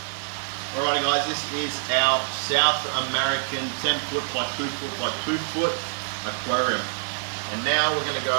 Alrighty guys, this is our South American 10 foot by 2 foot by 2 foot aquarium. And now we're going to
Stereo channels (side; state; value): left; silent; 61 dB below the other